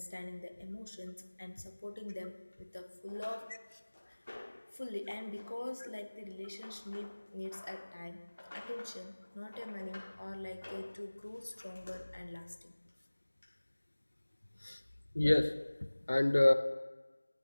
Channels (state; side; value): inverted; both; correlation -1.00